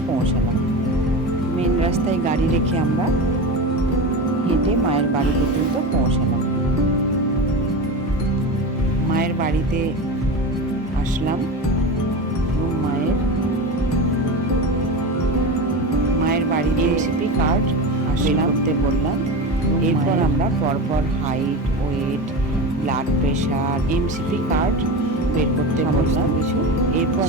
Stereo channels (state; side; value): normal; both; correlation 0.25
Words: পৌঁছালাম। মেন রাস্তায় গাড়ি রেখে আমরা হেঁটে মায়ের বাড়ি পর্যন্ত পৌঁছালাম। মায়ের বাড়িতে আসলাম এবং মায়ের বাড়িতে এমসিপি কার্ড আসলাম করতে বললাম। এরপর আমরা পরপর height, weight, blood pressure, MCP card বের করতে বললাম কিছু। এরপর